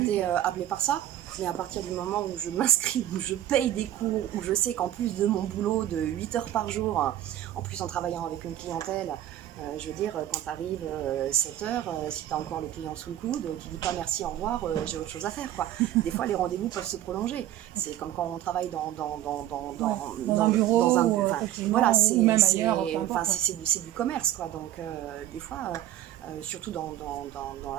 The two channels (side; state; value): left; quieter; 12.7 dB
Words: appelée par ça, mais à partir du moment où je m'inscris, où je paye des cours, où je sais qu'en plus de mon boulot de 8 heures par jour, en plus en travaillant avec une clientèle, je veux dire, quand tu arrives 7 heures, si tu as encore le client sous le coude, tu dis pas merci, au revoir, j'ai autre chose à faire, quoi. Des fois, les rendez-vous peuvent se prolonger. C'est comme quand on travaille dans un bureau, voilà, ou même ailleurs. C'est du commerce, quoi. Donc, des fois, surtout dans